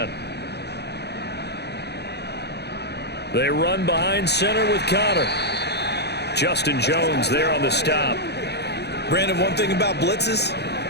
They run behind center with Connor. Justin Jones there on the stop. Brandon, one thing about blitzes,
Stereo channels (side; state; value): right; late; 0.48 ms